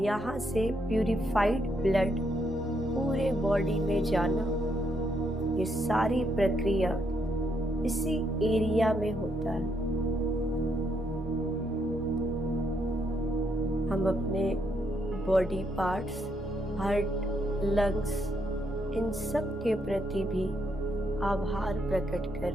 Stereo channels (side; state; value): both; normal; correlation 0.76